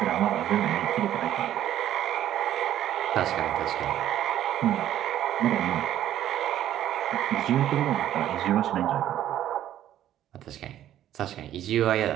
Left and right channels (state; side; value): quieter; left; 11.8 dB